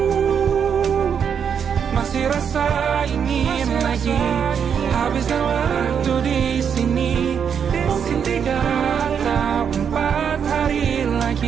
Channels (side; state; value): left; quieter; 7.4 dB